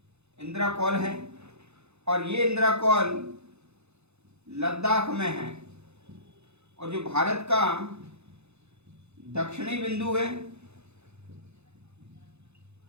है, और ये इंद्राकौल लद्दाख में है। और जो भारत का दक्षिणी बिंदु है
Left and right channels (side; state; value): left; late; 0.81 ms